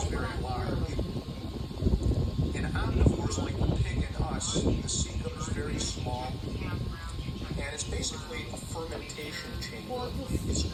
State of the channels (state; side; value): identical; both; correlation 1.00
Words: like, very not large. here. In omnivores like the pig and us, the cecum is very small, and it's basically a fermentation chamber. It's